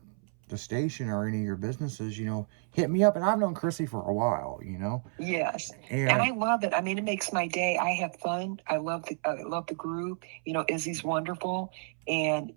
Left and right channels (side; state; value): left; silent; 57 dB below the other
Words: the station or any of your businesses, you know, hit me up. And I've known Chrissy for a while, you know. Yes. And I love it. I mean, it makes my day. I have fun. I love the group. You know, Izzy's wonderful. And,